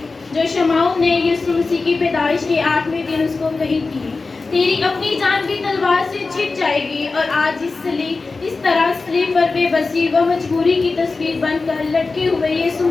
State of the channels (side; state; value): right; quieter; 3.9 dB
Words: जो शमाउन ने यीशु मसीह की पैदाइश के 8वें दिन उसको कही थी, तेरी अपनी जान भी तलवार से छिप जाएगी। और आज इस तरह सलीब पर बेबसी व मजबूरी की तस्वीर बनकर लटके हुए यीशु